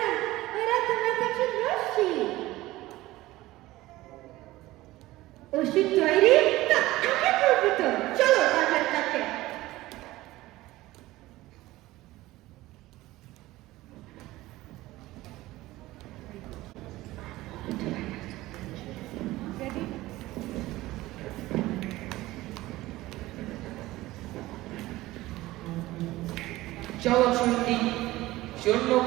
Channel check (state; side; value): quieter; left; 17.7 dB